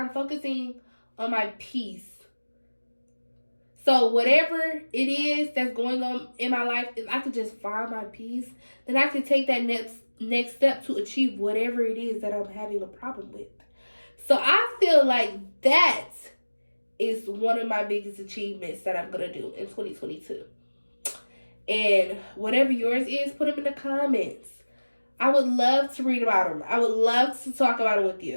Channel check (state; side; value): inverted; both; correlation -1.00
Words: on my peace. So whatever it is that's going on in my life, if I could just find my peace, then I can take that next step to achieve whatever it is that I'm having a problem with. So I feel like that is one of my biggest achievements that I'm going to do in 2022. And whatever yours is, put them in the comments. I would love to read about them. I would love to talk about them with